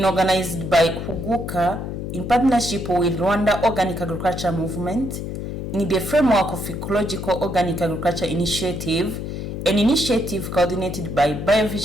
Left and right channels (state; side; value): noise; left; hum, 6 dB below the sound